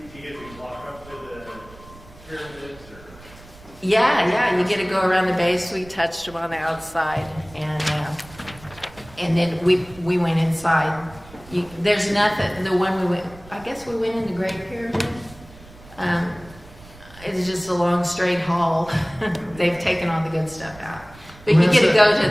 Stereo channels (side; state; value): right; noise; rumble, 21 dB below the sound